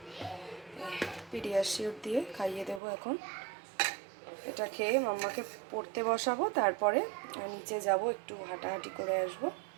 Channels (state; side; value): drops out; left; at 2.8 s